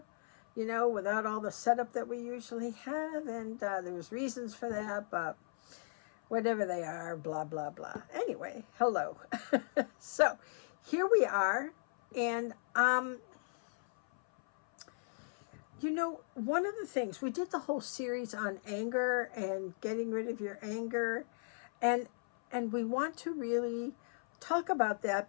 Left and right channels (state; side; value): silent; right; 54 dB below the other